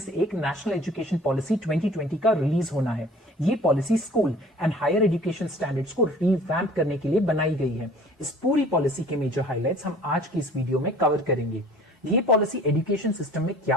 से एक नेशनल एजुकेशन पॉलिसी 2020 का रिलीज होना है। ये policy school and higher education standards को रिवैम्प करने के लिए बनाई गई है। इस पूरी पॉलिसी के मेजर हाइलाइट्स हम आज की इस वीडियो में कवर करेंगे। ये पॉलिसी एजुकेशन सिस्टम में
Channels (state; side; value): normal; both; correlation 0.49